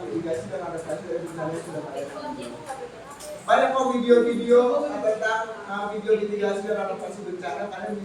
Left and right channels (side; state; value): both; identical; correlation 1.00